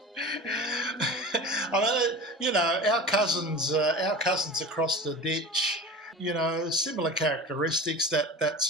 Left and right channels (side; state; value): both; normal; correlation 0.34